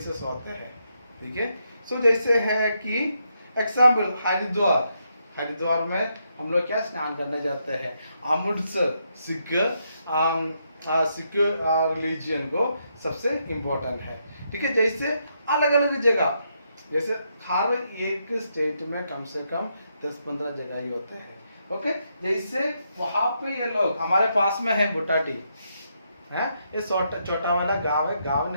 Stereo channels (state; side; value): inverted; both; correlation -0.79